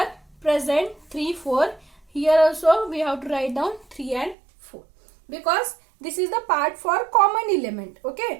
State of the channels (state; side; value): drops out; left; at 4.4 s